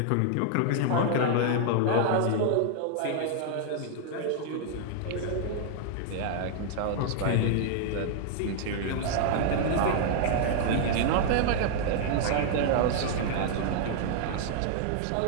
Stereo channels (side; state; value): both; different; correlation -0.01